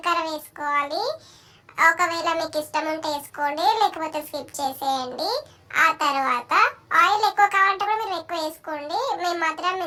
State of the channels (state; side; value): identical; both; correlation 1.00